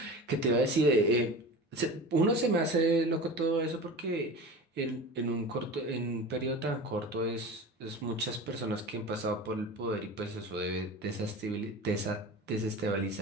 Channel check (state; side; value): normal; both; correlation 0.33